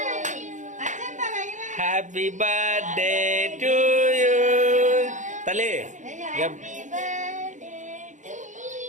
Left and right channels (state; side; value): late; left; 0.36 ms